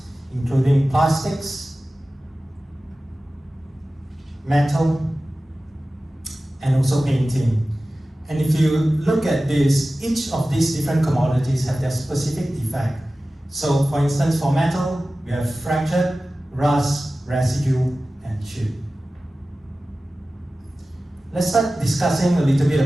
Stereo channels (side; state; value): both; normal; correlation 0.96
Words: including plastics, metal, and also painting. And if you look at this, each of these different commodities have their specific defect. So for instance, for metal, we have fractured, rust, residue, and chip. Let's start discussing a little bit